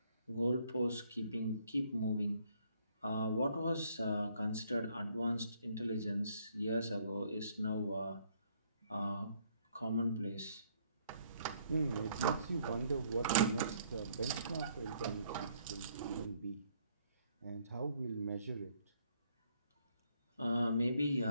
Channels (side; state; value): both; inverted; correlation -0.67